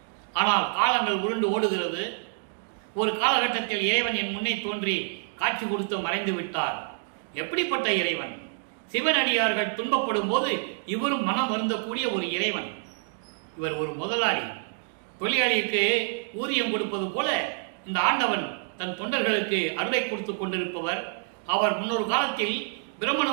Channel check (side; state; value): left; silent; 60 dB below the other